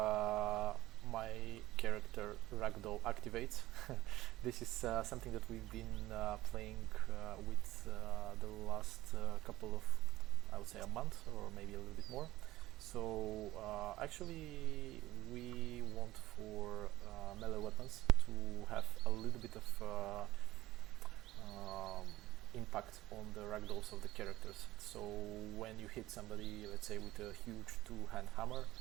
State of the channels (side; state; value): left; quieter; 16.4 dB